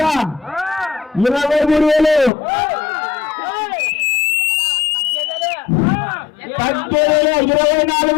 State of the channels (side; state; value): right; drops out; at 2.3 s